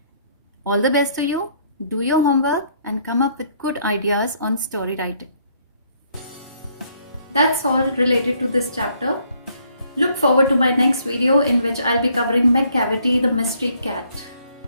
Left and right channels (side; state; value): both; inverted; correlation -0.67